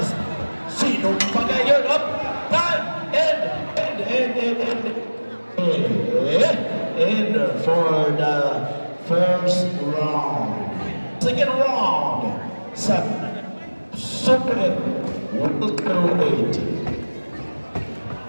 Sinong pagayon? Up, time, end for the first round. Second round sa Super welterweight.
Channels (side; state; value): both; inverted; correlation -1.00